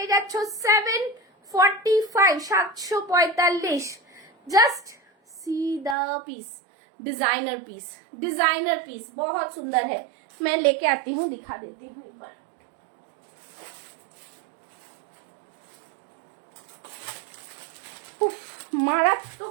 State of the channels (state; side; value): drops out; left; at 6.0 s